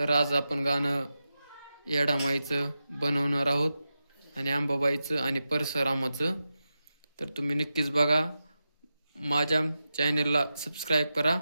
आज आपण गाणं येडामाईचं बनवणार आहोत आणि अंबाबाईचं आणि परशुरामाचं. तर तुम्ही नक्कीच बघा. माझ्या चॅनेलला सबस्क्राईब करा,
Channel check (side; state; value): both; inverted; correlation -0.90